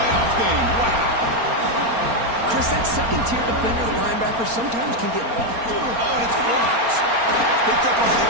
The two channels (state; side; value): late; left; 4.3 ms